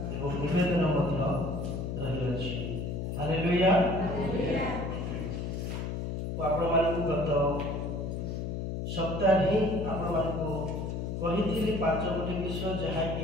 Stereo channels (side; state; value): left; noise; hum, 3 dB below the sound